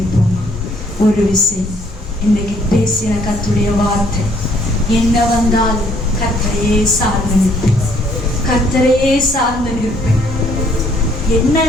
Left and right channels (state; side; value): normal; both; correlation 0.64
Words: ஒரு விசை இன்னைக்கு பேசின கர்த்தருடைய வார்த்தை, என்ன வந்தாலும் கர்த்தரையே சார்ந்து நிற்பேன், கர்த்தரையே சார்ந்து நிற்பேன். என்ன